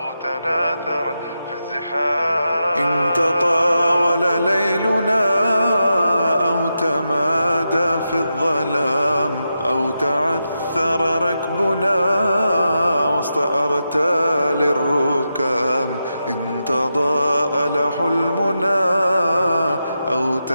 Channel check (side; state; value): both; inverted; correlation -0.88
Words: تناثر في الزحام، إن تطاول ليلنا أو تمادى في الظلام أو تعثر ركبنا وسط أرتال الركام، إن تضاءل حلمنا أو